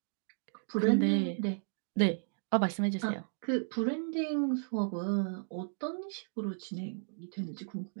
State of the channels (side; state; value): left; silent; digital silence